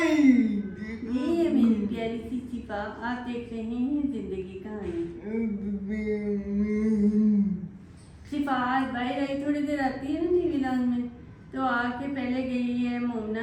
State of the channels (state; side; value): identical; both; correlation 1.00